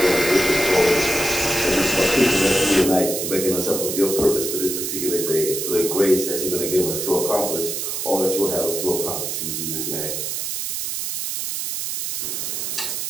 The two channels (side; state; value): right; noise; hiss, 3 dB below the sound